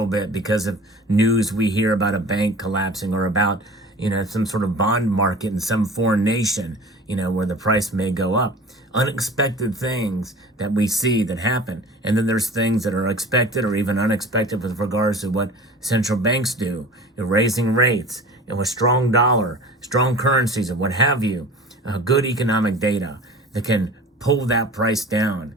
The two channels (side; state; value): both; normal; correlation 0.40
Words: bit because of news we hear about a bank collapsing, or about some sort of bond market in some foreign nation, where the price may go up. Unexpected things that we see that happen. And then there's things that are expected or even unexpected with regards to what central banks do. Raising rates, with strong dollar, strong currencies, and what have you. Good economic data that can pull that price down.